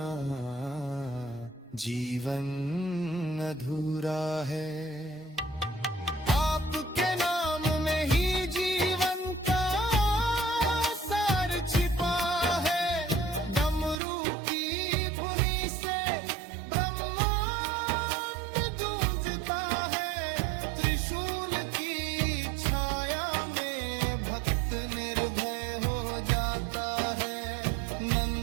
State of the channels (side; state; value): left; drops out; at 14.0 s